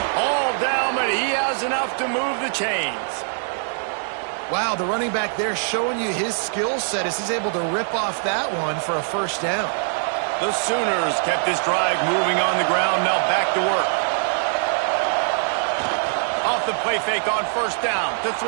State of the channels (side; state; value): left; silent; 59 dB below the other